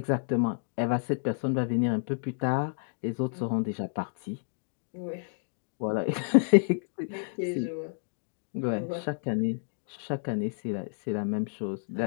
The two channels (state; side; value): silent; right; digital silence